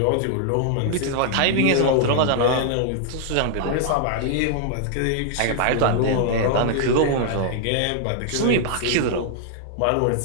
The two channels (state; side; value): different; both; correlation -0.01